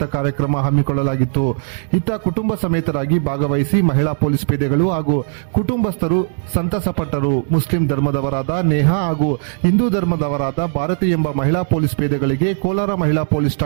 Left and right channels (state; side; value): silent; left; digital silence